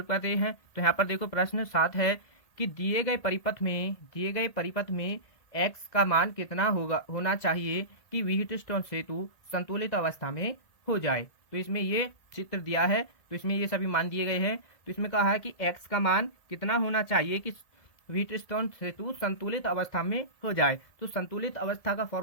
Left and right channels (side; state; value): right; late; 1.8 ms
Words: करते हैं। तो यहाँ पर देखो प्रश्न 7 है कि दिए गए परिपथ में x का मान कितना होना चाहिए कि व्हीटस्टोन सेतु संतुलित अवस्था में हो जाए। तो इसमें ये चित्र दिया है, तो इसमें ये सभी मान दिए गए हैं। तो इसमें कहा है कि x का मान कितना होना चाहिए कि व्हीटस्टोन सेतु संतुलित अवस्था में हो जाए। तो संतुलित अवस्था का